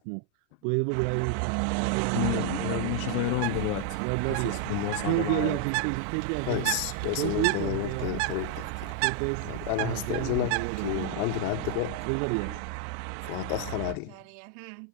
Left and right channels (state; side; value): different; both; correlation 0.00